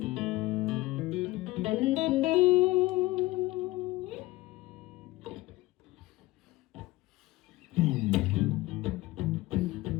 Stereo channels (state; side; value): quieter; right; 19.0 dB